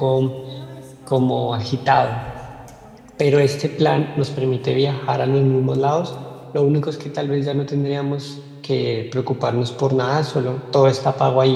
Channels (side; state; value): both; identical; correlation 1.00